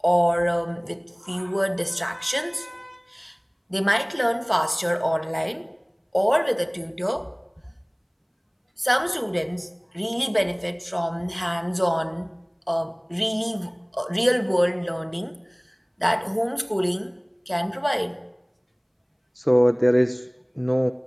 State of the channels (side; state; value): both; identical; correlation 1.00